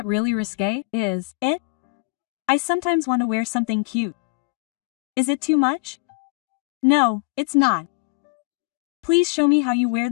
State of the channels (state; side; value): quieter; right; 27.7 dB